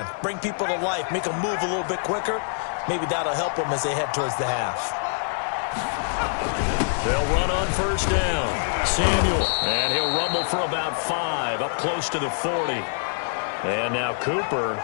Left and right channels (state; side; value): silent; right; digital silence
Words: bring people to life, make them move a little bit quicker. Maybe that'll help them as they head towards the half. They'll run on first down. Samuel, and he'll rumble for about 5, up close to the 40. And now Cooper,